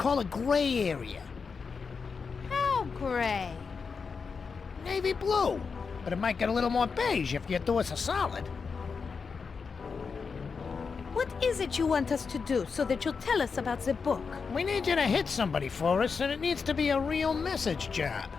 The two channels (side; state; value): right; quieter; 5.3 dB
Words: a gray area. How gray? Navy blue. But it might get a little more beige if you do us a solid. What is it you want us to do so that you'll tell us about the book? We need you to hit somebody for us, and it needs to be a real message job.